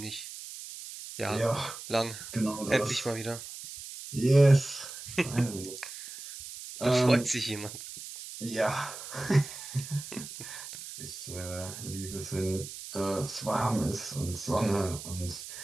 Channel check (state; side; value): noise; right; hiss, 11 dB below the sound